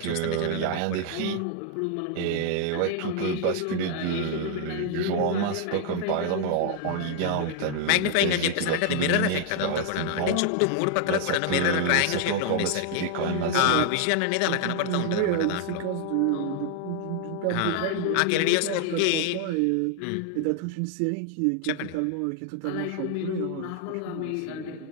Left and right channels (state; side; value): different; both; correlation 0.00